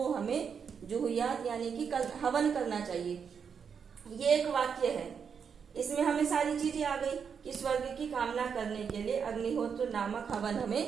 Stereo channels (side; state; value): left; quieter; 6.7 dB